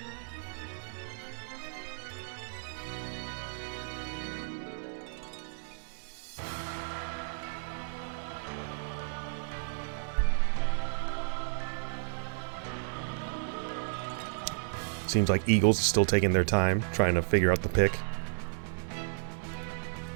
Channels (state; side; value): silent; left; digital silence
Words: Seems like Eagles is still taking their time trying to figure out the pick.